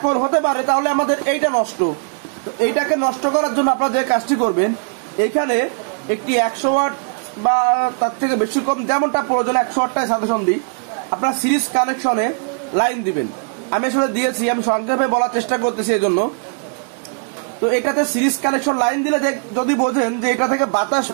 হতে পারে তাহলে আমাদের এইটা নষ্ট। তো এইটাকে নষ্ট করার জন্য আপনারা যে কাজটি করবেন, এইখানে একটি 100 ওয়াট বা তার থেকে বেশি কম যেমনটা প্রয়োজন 100 ওয়াটটায় সাজেশন দিই, আপনার সিরিজ কানেকশনে লাইন দিবেন। আমি আসলে দিয়েছি, আমি সংক্ষেপে বলার চেষ্টা করতেছি এই জন্য। তো এটাতে সিরিজ কানেকশন লাইন দিলে যদি বোঝেন যে এটা থেকে বাতাস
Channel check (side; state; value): left; quieter; 38.8 dB